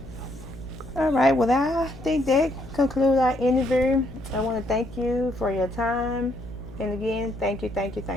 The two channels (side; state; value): left; noise; hum, 17 dB below the sound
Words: All right. Well, I think that concludes our interview. I want to thank you for your time. And again, thank you.